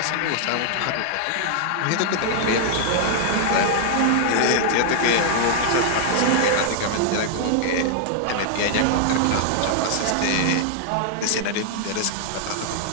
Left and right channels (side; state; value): both; different; correlation -0.01